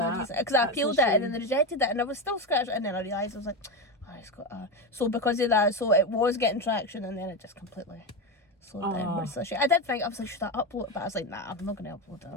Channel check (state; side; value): normal; both; correlation 0.15